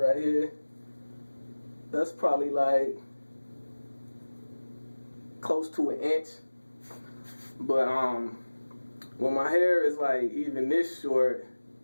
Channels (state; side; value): inverted; both; correlation -1.00